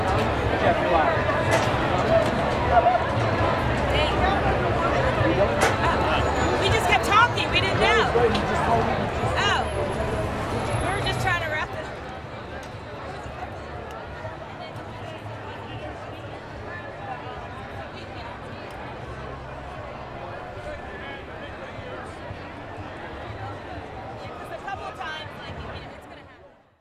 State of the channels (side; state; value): both; identical; correlation 1.00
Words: Jeff, you're live. We just kept talking. We didn't know. Oh. We were just trying to wrap it up. A couple of times, like